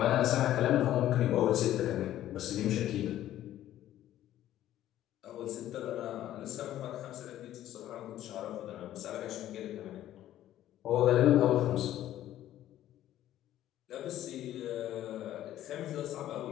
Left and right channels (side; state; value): right; quieter; 12.8 dB